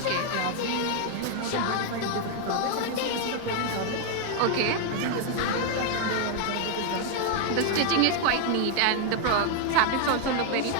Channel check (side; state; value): both; different; correlation 0.00